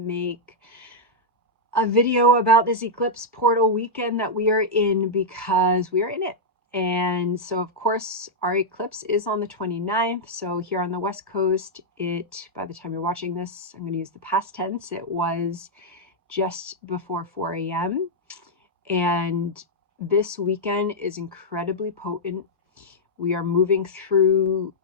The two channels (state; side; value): normal; both; correlation -0.06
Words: a video about this eclipse portal weekend that we are in because we are in it. And so, of course, our eclipse is on the 29th. So here on the West Coast, by the time you're watching this, I'm going to use the past tense. It was just before 4 a.m. And this weekend is incredibly potent. We are moving through